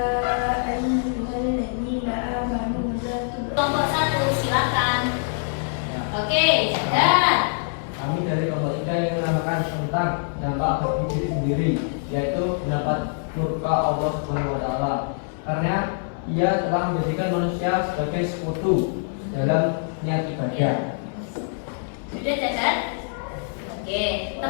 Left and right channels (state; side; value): silent; right; digital silence